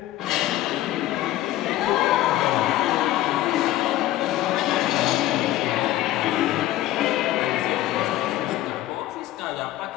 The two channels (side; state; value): right; quieter; 14.8 dB